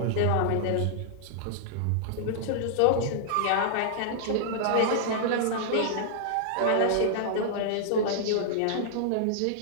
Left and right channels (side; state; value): both; different; correlation -0.01